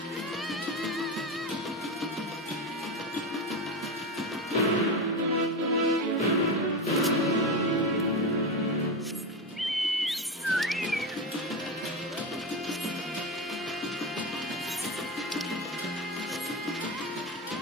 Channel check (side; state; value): both; normal; correlation 0.17